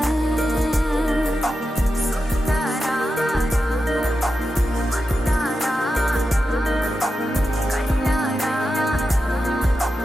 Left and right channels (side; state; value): both; normal; correlation 0.90